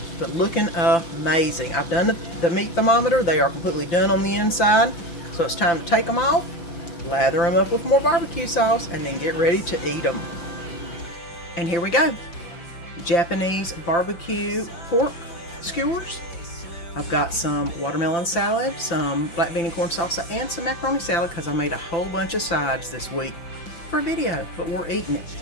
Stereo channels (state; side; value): late; right; 5.9 ms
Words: but looking amazing. I've done the meat thermometer. They are completely done on the inside. So it's time to take them off, lather them up with more barbecue sauce, and then get ready to eat them. And here we go. Japanese barbecue pork skewers. I've got some watermelon salad, some black bean and corn salsa, and some macaroni salad because I made a whole bunch of sides this week for a video, but we're eating it.